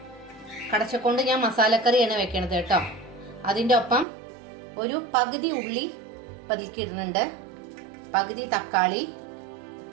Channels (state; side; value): drops out; left; at 4.0 s